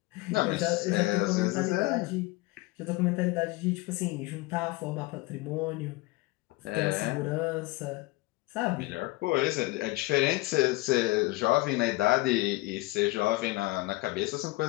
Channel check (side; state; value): right; quieter; 21.3 dB